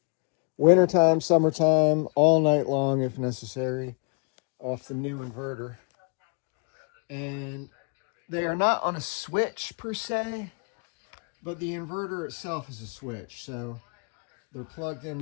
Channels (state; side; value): quieter; right; 38.9 dB